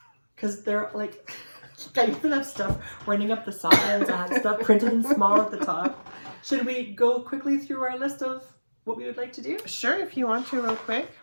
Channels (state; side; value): inverted; both; correlation -1.00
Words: Because they're like, I even have stuff running up the sides. I have stuff printed in small at the top. Should we go quickly through our list of what we would like to do? sure, if you want to, real quick.